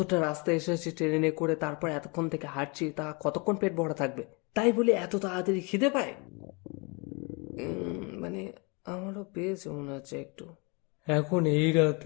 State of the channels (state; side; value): quieter; right; 30.7 dB